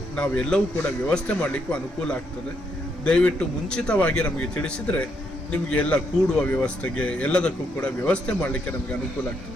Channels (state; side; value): normal; both; correlation 0.76